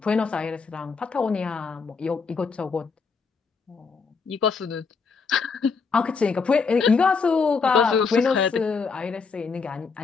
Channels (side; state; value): right; quieter; 5.1 dB